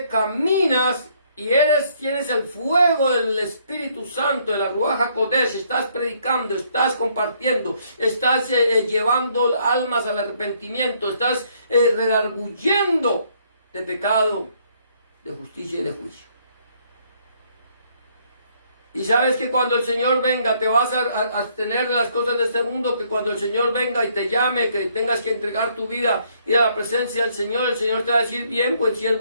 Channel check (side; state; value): both; inverted; correlation -0.67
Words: caminas y tienes el fuego del Espíritu Santo, de la Ruach HaKodesh, estás predicando, estás compartiendo, estás llevando almas al arrepentimiento, estás redarguyendo de pecado, de justicia y de juicio. Y sabes que cuando el Señor venga te vas a abstener de las cosas de este mundo, que cuando el Señor venga y te llame, que tengas que entregar tu vida, ir a la presencia del Señor, el Señor te va a decir, bien, buen